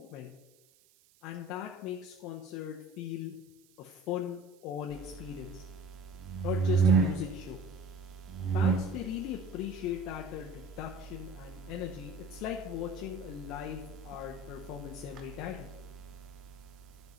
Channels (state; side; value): noise; right; hiss, 29 dB below the sound